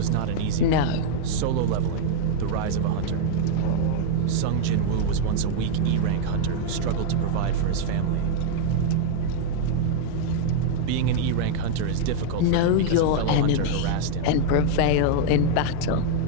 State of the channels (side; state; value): both; different; correlation -0.01